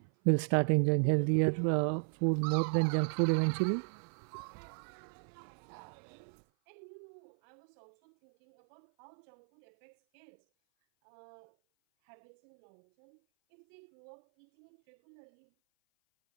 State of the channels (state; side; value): silent; left; 55 dB below the other